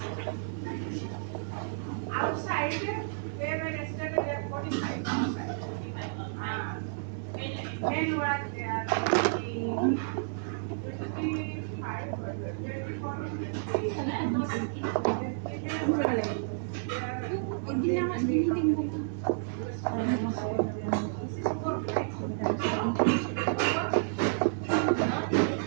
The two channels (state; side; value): silent; left; digital silence